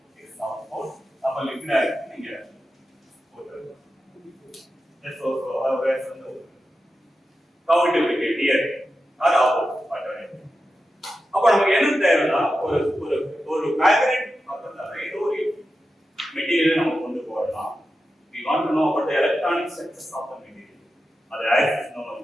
இது சவுத் போல். அப்ப லிக்விட் ஆக்சிஜன் இங்க போட்டுருங்க. That's also our way from the how it will be here. அது ஆப்போசிட். அப்ப நமக்கு என்ன தேவைன்னா ஒரு ஒரு ஒரு மேக்னெட் பக்கத்துல ஏதோ ஒரு மெட்டீரியல் நம்ம கொண்டு போறோம். we want to know about the electronic structures of the material. அது ஆக்சிஸ் நோ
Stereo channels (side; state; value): both; normal; correlation 0.91